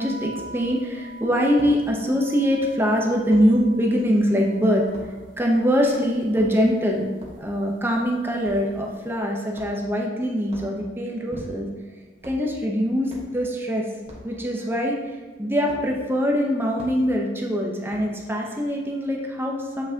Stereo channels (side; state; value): both; normal; correlation 0.74